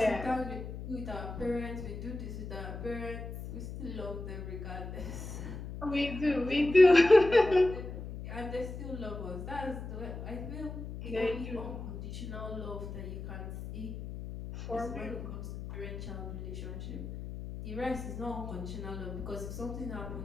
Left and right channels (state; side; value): noise; left; hum, 8 dB below the sound